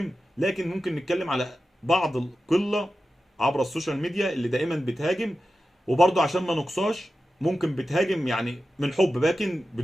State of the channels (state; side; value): normal; both; correlation 0.92